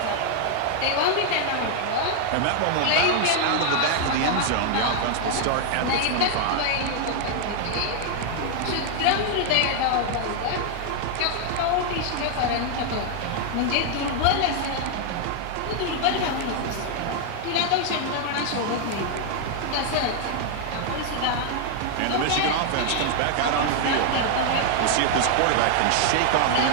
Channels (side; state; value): both; different; correlation 0.00